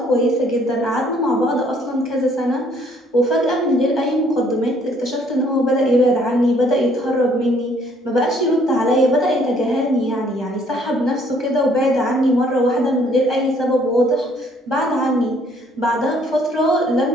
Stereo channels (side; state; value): both; normal; correlation 0.63